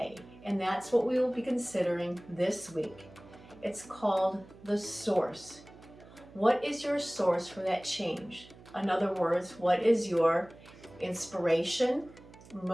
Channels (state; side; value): noise; right; hum, 21 dB below the sound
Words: and that's what we will be considering this week. It's called the source. What is your source for that change? In other words, what is your inspiration,